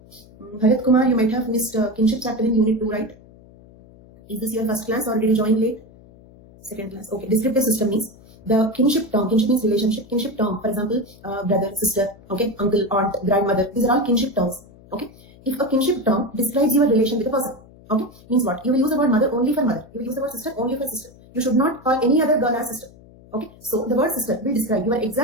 Bharat Kumar, you might have missed kinship chapter in Unit 2, right? Is this your first class or did you join late? Second class. Okay. Descriptive system means the kinship term. Kinship means relationship. Kinship term, for example, brother, sister, okay, uncle, aunt, grandmother. These are all kinship terms. Okay. If a kinship term describes your relation with a person, okay, means what? You will use the word mother only for mother. You will use the word sister only for sister. You should not call any other girl as sister. Okay. So the word sister will describe your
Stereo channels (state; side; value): noise; left; hum, 24 dB below the sound